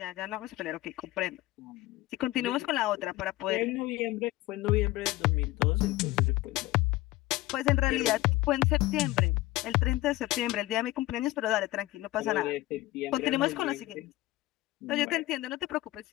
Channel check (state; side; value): quieter; right; 17.9 dB